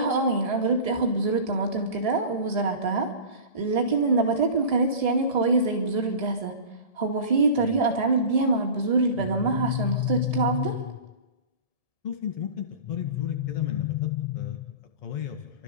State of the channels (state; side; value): late; right; 1.7 ms